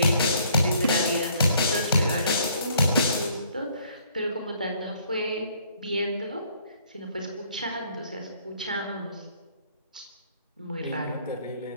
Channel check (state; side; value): inverted; both; correlation -0.62